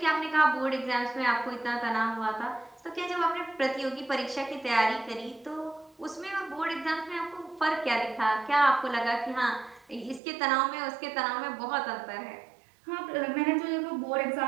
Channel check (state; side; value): drops out; left; at 10.2 s